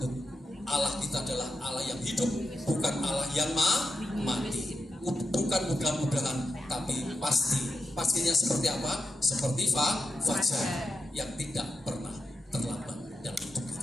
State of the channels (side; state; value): both; normal; correlation 0.88